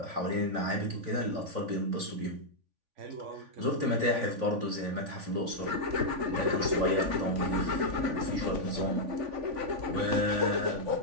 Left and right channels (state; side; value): late; left; 3.5 ms